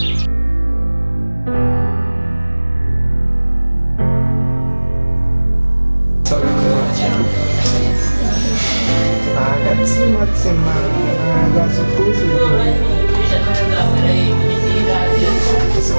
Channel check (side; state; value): both; inverted; correlation -1.00